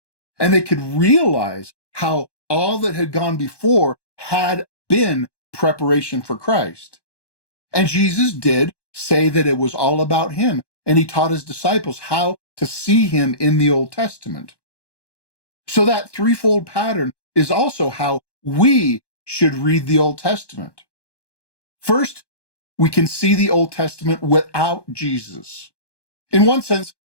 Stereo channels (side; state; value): right; late; 1.1 ms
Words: And they could realize how all that had gone before had been preparation for Christ. And Jesus did say that it was all about him, and he taught his disciples how to see him in the Old Testament. So that threefold pattern is also how we should read the Old Testament. First, we can see the Old Testament without Jesus. In one sense,